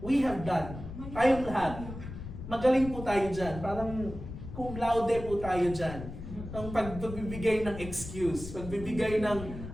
have done. Tayong lahat. Magaling po tayo dyan. Parang cum laude po tayo dyan. Ang pagbibigay ng excuse. Pagbibigay ng,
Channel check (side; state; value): left; noise; rumble, 10 dB below the sound